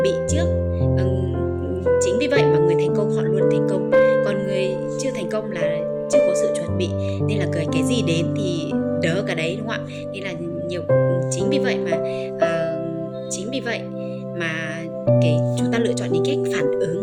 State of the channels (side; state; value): both; identical; correlation 1.00